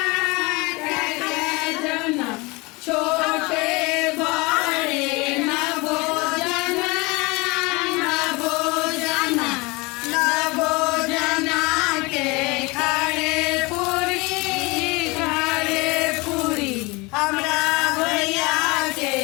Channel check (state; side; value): quieter; right; 25.4 dB